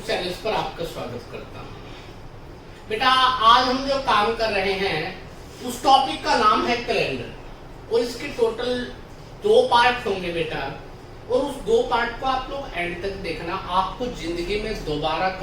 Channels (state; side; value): identical; both; correlation 1.00